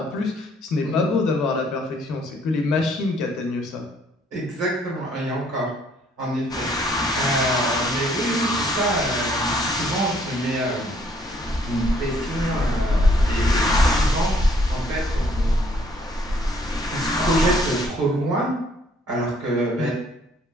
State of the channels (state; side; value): normal; both; correlation 0.63